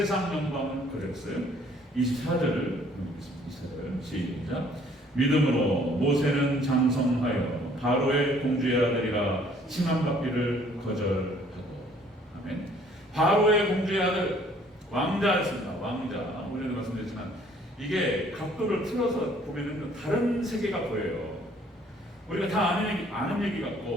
영광은 거절했어요. 24절을 읽겠습니다. 24절 시작. 믿음으로 모세는 장성하여 바로의 공주의 아들이라 칭함받기를 거절하고. 아멘. 바로의 공주의 아들, 왕자였습니다. 왕자. 오전에도 말씀드렸지만 이게 각도를 틀어서 보면은 다른 세계가 보여요. 우리가 다 아는 얘기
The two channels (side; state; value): both; normal; correlation 0.59